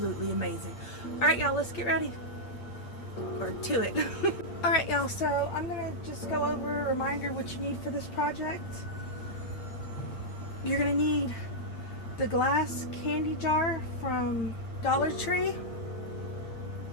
amazing. Alright y'all, let's get ready. Or to it. Alright y'all, so I'm going to just go over a reminder what you need for this project. You're going to need the glass candy jar from Dollar Tree.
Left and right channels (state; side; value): late; right; 8.7 ms